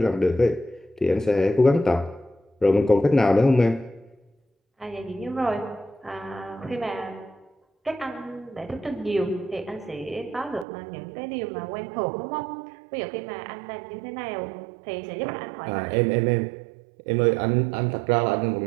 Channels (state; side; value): drops out; left; at 10.7 s